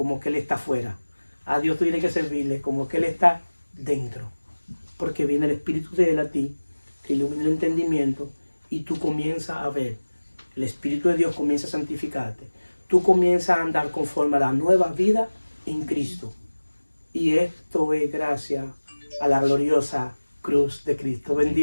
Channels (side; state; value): both; inverted; correlation -1.00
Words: que Él está afuera. A Dios tú tienes que servirle como que Él está dentro, porque viene el Espíritu de Él a ti, te ilumina el entendimiento y tú comienzas a ver. El Espíritu de Dios comienza a santificarte. Tú comienzas a andar conforme a la nueva vida en Cristo. Y esto es gracias a la gloriosa cruz de Cristo.